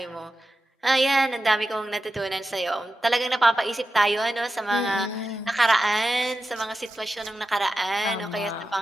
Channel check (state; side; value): normal; both; correlation 0.91